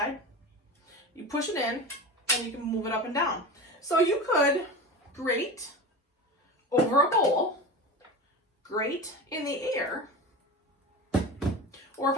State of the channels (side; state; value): both; normal; correlation 0.29